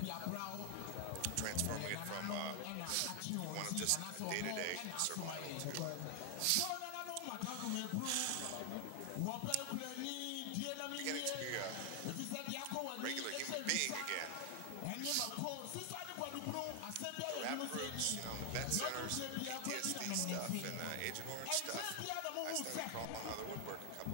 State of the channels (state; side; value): different; both; correlation 0.00